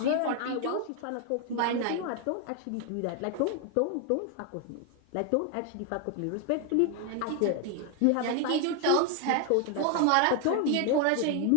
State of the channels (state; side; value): different; both; correlation 0.01